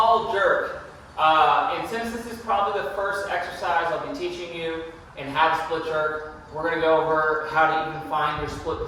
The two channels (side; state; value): both; identical; correlation 1.00